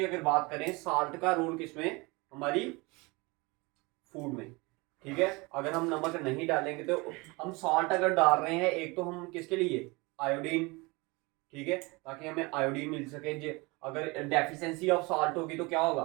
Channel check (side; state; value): left; quieter; 25.6 dB